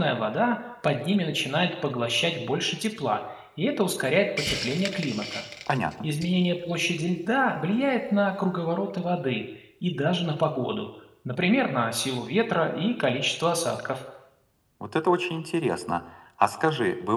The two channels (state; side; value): identical; both; correlation 1.00